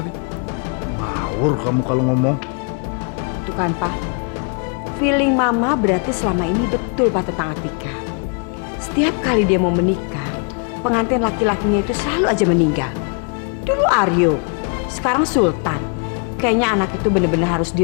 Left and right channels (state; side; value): quieter; right; 40.0 dB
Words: Ngawur kamu kalau ngomong. Tuh kan, Pak. Feeling Mama berarti selama ini betul, Pak, tentang Atika. Setiap kali dia mau menikah, pengantin laki-lakinya itu selalu aja meninggal. Dulu Aryo, sekarang Sultan. Kayaknya anak itu bener-bener harus